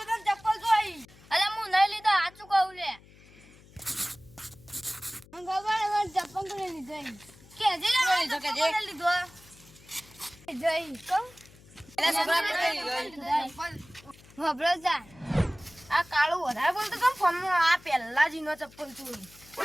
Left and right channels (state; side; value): noise; left; hum, 24 dB below the sound